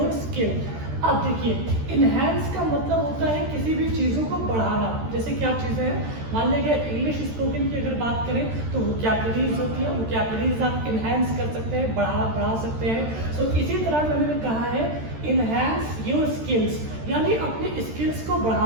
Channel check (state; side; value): late; left; 13 ms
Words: skill. अब देखिए इनहैंस का मतलब होता है किसी भी चीज़ों को बढ़ाना। जैसे क्या चीज़ें हैं, मान लीजिए इंग्लिश स्पोकन की अगर बात करें तो वोकैबुलरीज होती है, वोकैबुलरीज आप इनहैंस कर सकते हैं, बढ़ा सकते हैं। सो इसी तरह मैंने कहा है इनहैंस योर स्किल्स, यानी अपनी स्किल्स को